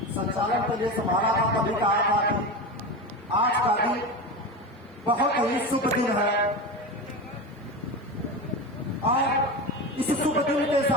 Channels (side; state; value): both; normal; correlation 0.23